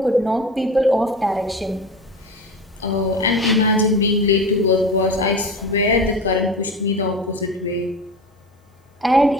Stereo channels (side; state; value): both; normal; correlation 0.30